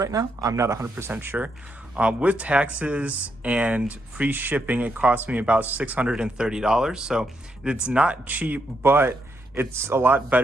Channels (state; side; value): normal; both; correlation 0.79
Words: now. I'm not 100% sure. With taxes and free shipping, it cost me about $630. So it's not cheap, but it's a lot